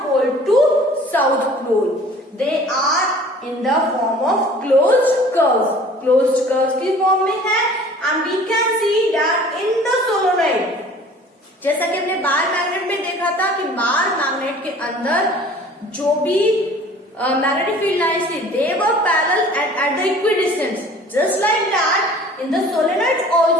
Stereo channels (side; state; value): both; normal; correlation 0.48